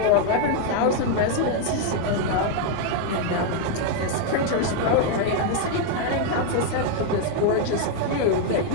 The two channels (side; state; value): both; different; correlation 0.00